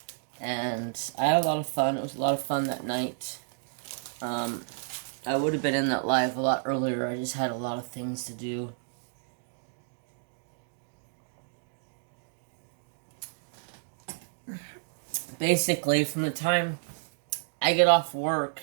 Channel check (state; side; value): silent; left; digital silence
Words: And I had a lot of fun. It was a lot of fun that night. I would have been in that live a lot earlier. I just had a lot of things to do. Basically, from the time I get off work,